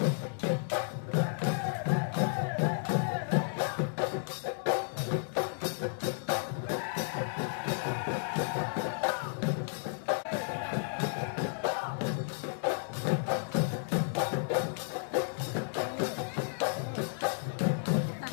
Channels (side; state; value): right; silent; digital silence